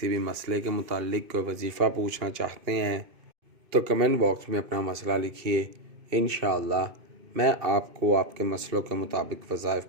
بھی مسئلے کے متعلق کوئی وظیفہ پوچھنا چاہتے ہیں تو کمنٹ باکس میں اپنا مسئلہ لکھیے، انشاءاللہ میں آپ کو آپ کے مسئلوں کے مطابق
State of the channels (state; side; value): late; left; 2.5 ms